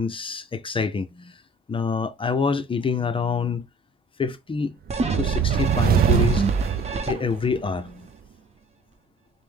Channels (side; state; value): both; normal; correlation 0.50